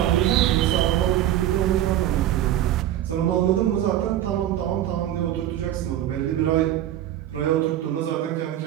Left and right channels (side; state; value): left; quieter; 12.4 dB